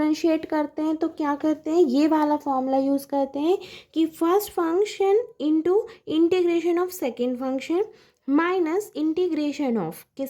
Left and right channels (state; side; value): identical; both; correlation 1.00